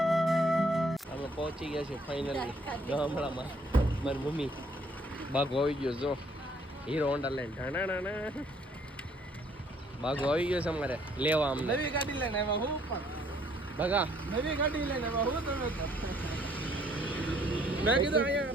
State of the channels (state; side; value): normal; both; correlation 0.63